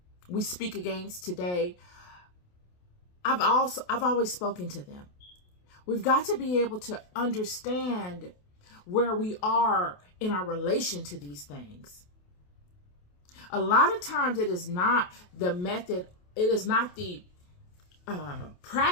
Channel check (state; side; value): late; right; 28 ms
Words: speak against today, I've always spoken to them. We've got to be able to understand where we are in our relation to these things. A lot of times it is not the method, it is not the